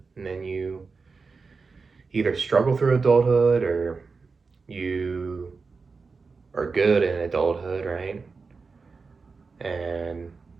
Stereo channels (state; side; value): quieter; left; 4.6 dB